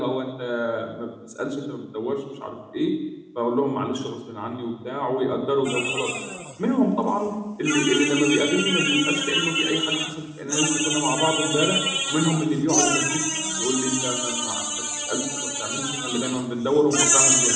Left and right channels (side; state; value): both; identical; correlation 1.00